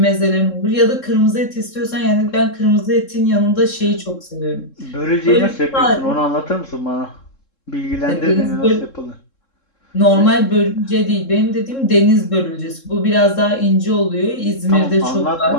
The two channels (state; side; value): late; right; 3.7 ms